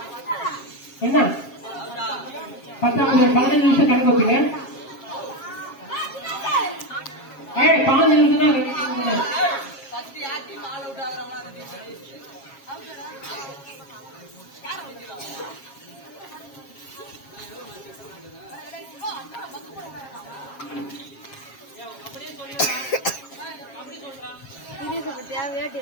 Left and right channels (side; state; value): right; late; 7.4 ms